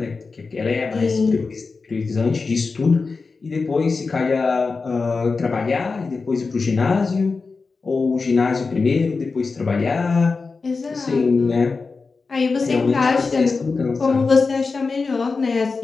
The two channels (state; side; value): quieter; right; 4.3 dB